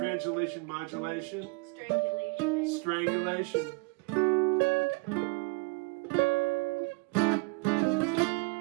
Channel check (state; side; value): quieter; left; 28.9 dB